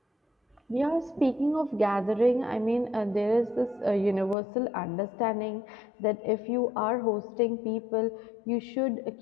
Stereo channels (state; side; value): drops out; right; at 4.4 s